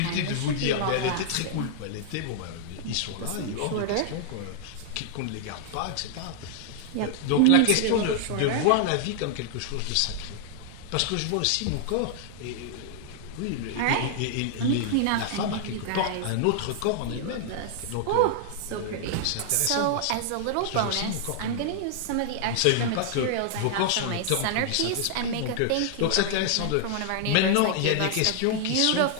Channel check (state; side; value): different; both; correlation 0.00